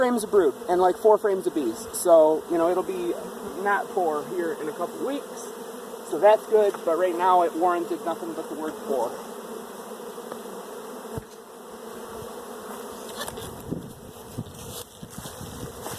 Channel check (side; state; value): both; identical; correlation 1.00